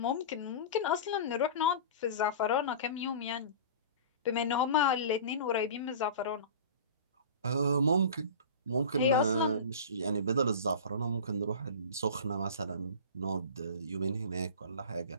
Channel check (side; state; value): both; inverted; correlation -0.35